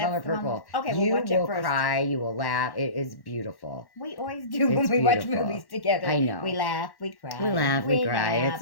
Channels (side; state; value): right; late; 1.1 ms